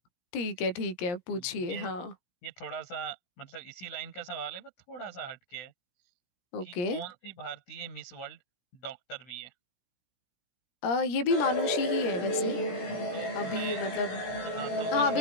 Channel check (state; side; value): late; right; 17 ms